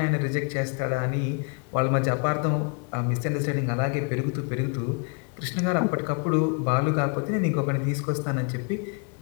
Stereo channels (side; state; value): right; quieter; 37.8 dB